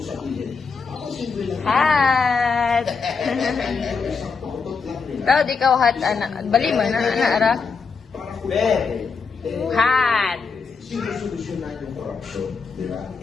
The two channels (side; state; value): right; quieter; 5.2 dB